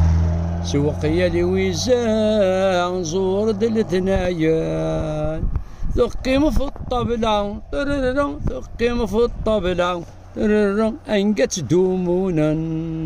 سوقيا لي ويزا نزور دلتنايا ثقيم في الطبلة ثقيم في الطبلة انقت دومونا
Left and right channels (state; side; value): identical; both; correlation 1.00